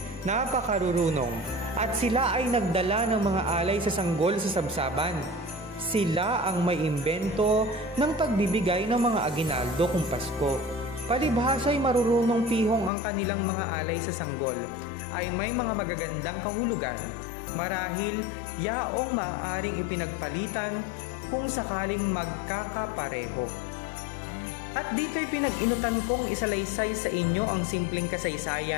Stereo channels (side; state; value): right; drops out; at 12.9 s